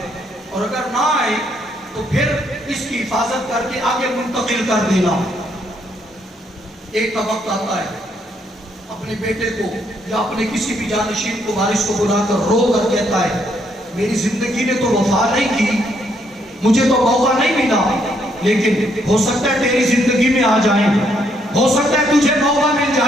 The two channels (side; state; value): both; normal; correlation 0.72